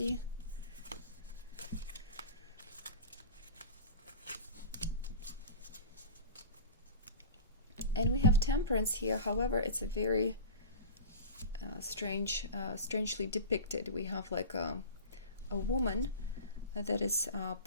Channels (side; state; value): both; inverted; correlation -0.32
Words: And we have temperance here. However, it's a very strangely depicted. We have like a woman that is